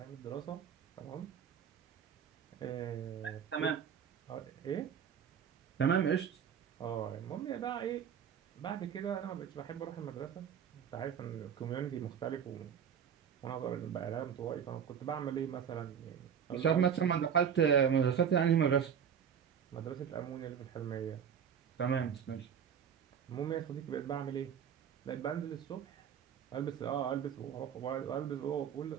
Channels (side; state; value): left; quieter; 8.0 dB